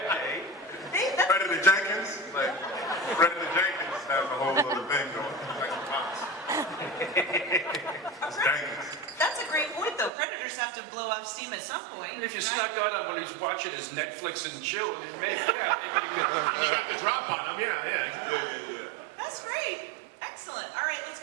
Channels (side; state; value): left; drops out; at 10.1 s